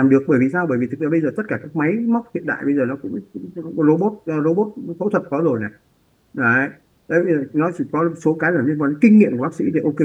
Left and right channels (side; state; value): both; identical; correlation 1.00